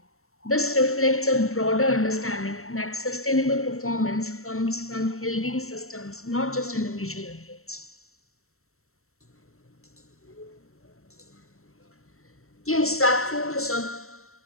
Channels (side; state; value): right; late; 0.63 ms